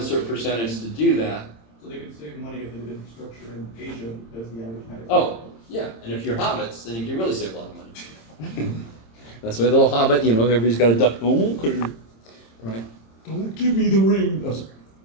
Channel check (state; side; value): late; right; 26 ms